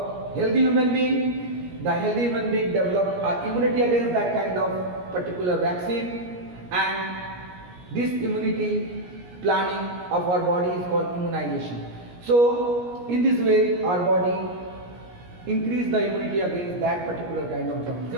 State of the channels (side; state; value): left; late; 17 ms